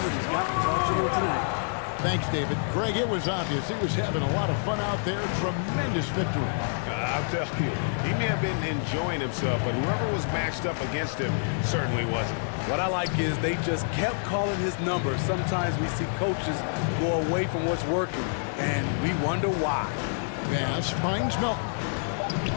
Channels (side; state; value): right; silent; 58 dB below the other